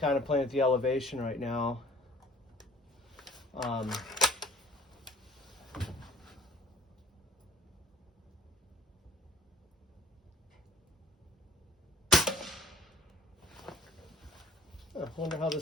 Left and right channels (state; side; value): normal; both; correlation 0.45